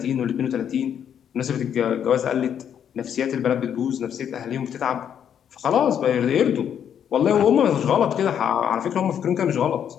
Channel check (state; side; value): quieter; right; 8.8 dB